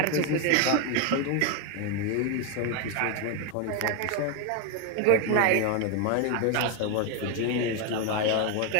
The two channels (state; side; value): different; both; correlation 0.01